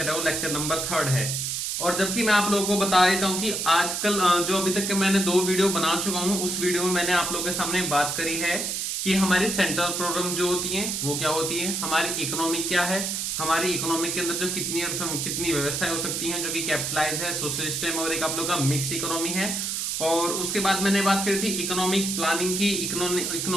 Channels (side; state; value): right; noise; hiss, 1 dB below the sound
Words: है वो लेक्चर नंबर 3 है। और जबकि मैं आप लोगों को बता देता हूं कि आजकल जो अभी तक के मैंने 2 वीडियो बना चुका हूं, उस वीडियो में मैंने आप लोगों के सामने बात करी है कि हमारी सेंट्रल प्रॉब्लम जो होती है वो क्या होती है, हमारी इकोनॉमी क्या है, हमारी इकोनॉमी के अंदर जो कितनी व्यवस्थाएं हो सकती हैं जो कि कैपिटलाइज है, सोशलिस्ट है और एक आप लोग का मिक्स इकोनॉमी है। और उसके बाद मैंने बात करी थी इकोनॉमिक प्लानिंग की।